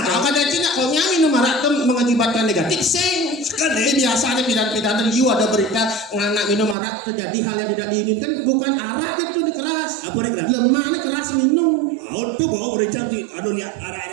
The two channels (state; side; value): drops out; left; at 6.8 s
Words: Kalau kadang cina kalau minum harak itu mengakibatkan negatif sing. Ini biasanya pidan-pidan you ada berita anak minum harak terjadi hal yang tidak diinginkan, bukan arak itu nih keras. Apa nih keras? Lemah nih keras minum. Tuh bawa bericang sih. Aduh lihat